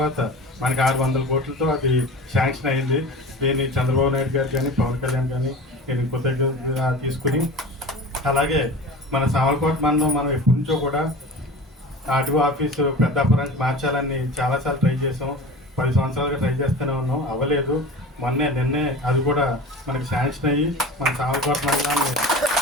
మనకి 600 కోట్లతో అది శాంక్షన్ అయింది. దీన్ని చంద్రబాబు నాయుడు గారు కానీ పవన్ కళ్యాణ్ కానీ నేను కృతజ్ఞతగా తీసుకుని, అలాగే మన సామర్లకోట మనం ఎప్పటి నుంచో కూడా ఆర్టీఓ ఆఫీసు పెద్దాపురానికి మార్చాలని చాలాసార్లు ట్రై చేసాం. 10 సంవత్సరాలుగా ట్రై చేస్తూనే ఉన్నాం, అవ్వలేదు. నిన్నే అది కూడా మనకి శాంక్షన్ అయ్యి మన సామర్లకోట మండలాన్ని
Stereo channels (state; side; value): normal; both; correlation 0.35